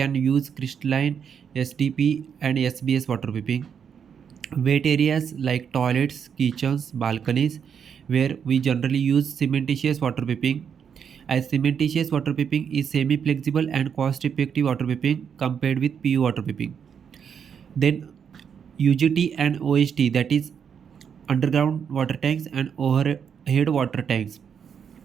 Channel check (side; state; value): left; quieter; 7.4 dB